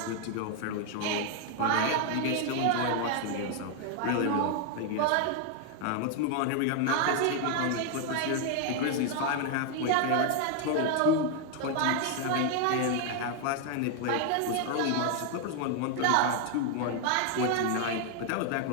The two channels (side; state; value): both; different; correlation 0.00